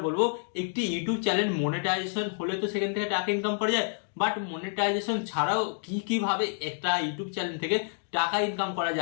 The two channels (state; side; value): silent; right; digital silence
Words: বলবো, একটি ইউটিউব চ্যানেল মনিটাইজেশন হলে তো সেখান থেকে টাকা ইনকাম করা যায়, বাট মনিটাইজেশন ছাড়াও কি ভাবে একটা ইউটিউব চ্যানেল থেকে টাকা ইনকাম করা